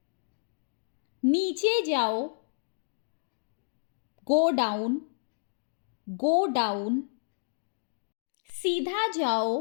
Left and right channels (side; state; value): right; silent; digital silence